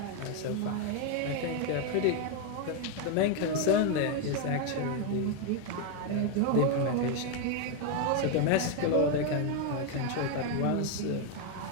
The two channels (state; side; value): different; both; correlation 0.01